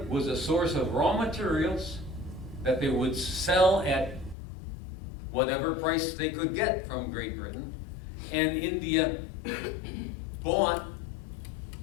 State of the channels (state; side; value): drops out; right; at 4.4 s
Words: was a source of raw materials that they would sell at whatever price they could get from Great Britain, and India bought